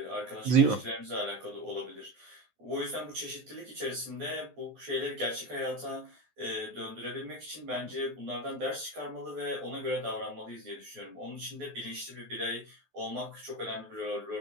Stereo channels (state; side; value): late; left; 12 ms